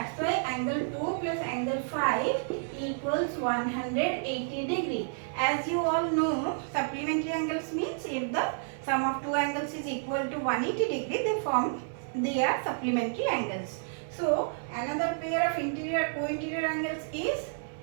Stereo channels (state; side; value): silent; left; digital silence